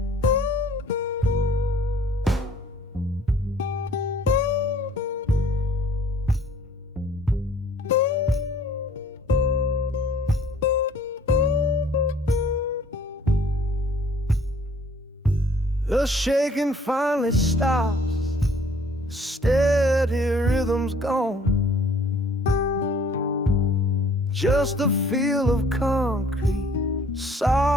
The shaking finally stops, steady rhythm's gone. Just a feel of concrete,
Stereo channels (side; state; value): both; normal; correlation 0.57